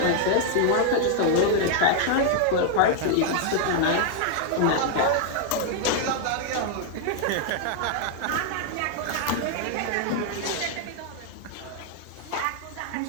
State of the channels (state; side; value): different; both; correlation 0.00